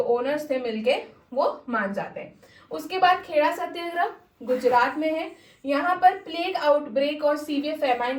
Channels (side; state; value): both; identical; correlation 1.00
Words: ओनर्स थे मिलके वो मान जाते हैं। उसके बाद खेड़ा सत्याग्रह गुजरात में है। यहाँ पर प्लेग आउटब्रेक और सीवियर फेमाइन